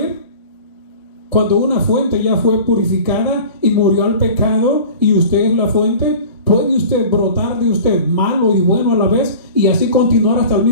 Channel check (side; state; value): both; inverted; correlation -0.40